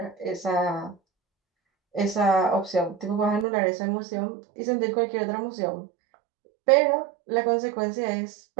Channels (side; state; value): left; drops out; at 3.5 s